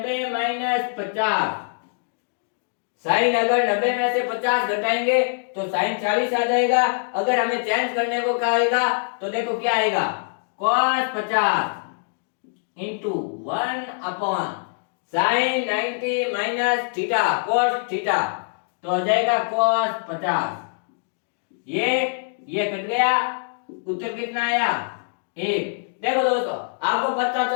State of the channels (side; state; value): right; silent; digital silence